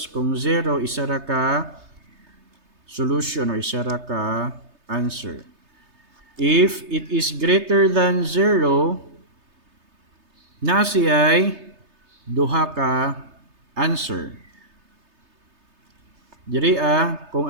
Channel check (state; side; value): late; left; 3.3 ms